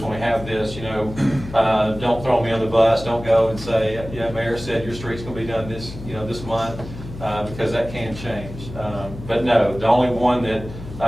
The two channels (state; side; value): noise; left; hum, 12 dB below the sound